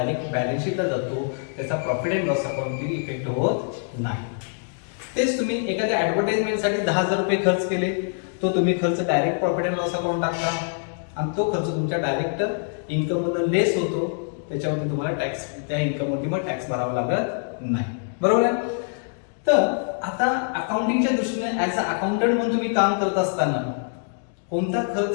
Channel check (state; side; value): silent; right; 62 dB below the other